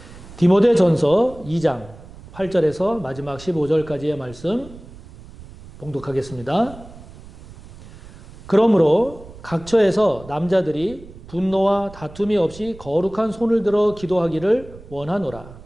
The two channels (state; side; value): noise; right; rumble, 18 dB below the sound